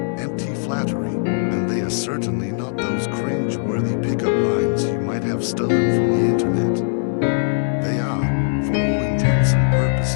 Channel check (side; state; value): right; silent; digital silence